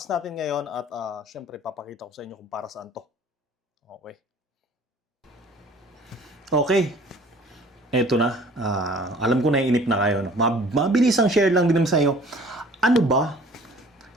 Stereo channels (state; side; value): normal; both; correlation 0.50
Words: natin ngayon at siyempre, papakita ko sa inyo kung para saan to. Okay. Okay. Eto na, alam ko na inip na kayo. No? Mabilisang share lang din naman sa inyo. Ano ba